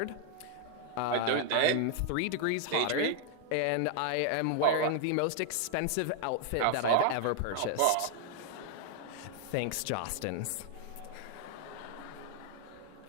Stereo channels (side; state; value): both; different; correlation 0.00